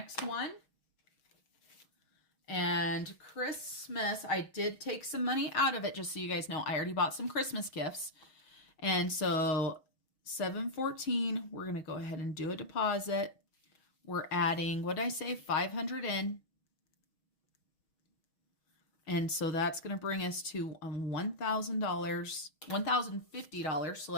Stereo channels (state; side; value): late; right; 6.3 ms